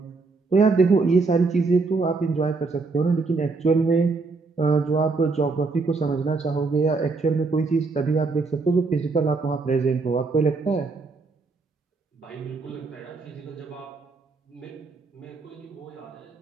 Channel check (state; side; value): quieter; left; 4.0 dB